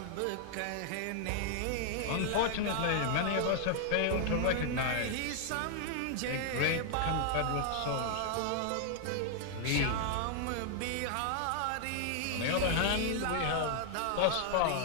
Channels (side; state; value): both; different; correlation 0.00